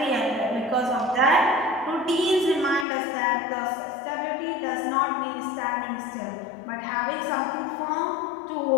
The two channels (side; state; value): right; drops out; at 2.9 s